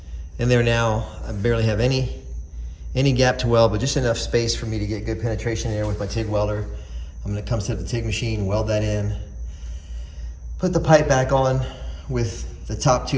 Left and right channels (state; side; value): identical; both; correlation 1.00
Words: in there now. I barely have any gap to weld, but just enough space for me to get good penetration in there with my TIG welder. I'm gonna come set up the TIG machine, weld that in, put the pipe back on with the top